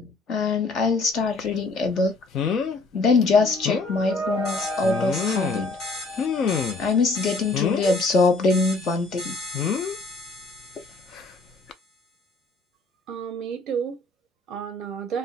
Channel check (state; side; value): quieter; right; 3.4 dB